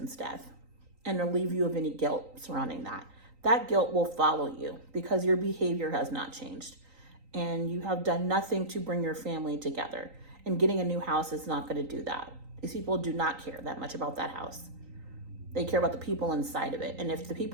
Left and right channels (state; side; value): late; left; 3.9 ms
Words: death and relieve you of any guilt surrounding that. That guilt will follow you because your behavior has not changed and you have done nothing to bring your family together. And getting a new house is not going to do that. These people do not care that much about that house. They care about the people inside of it. And if the